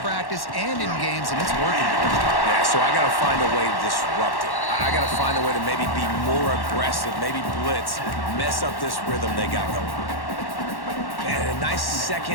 practice and in games, and it's working. Yeah, so I got to find a way to disrupt it. I got to find a way to maybe be more aggressive, maybe blitz, mess up this rhythm they got going. And a nice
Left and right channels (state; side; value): late; right; 1.1 ms